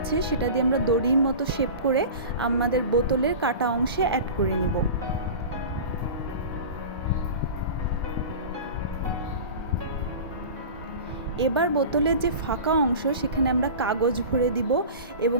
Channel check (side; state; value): both; inverted; correlation -0.34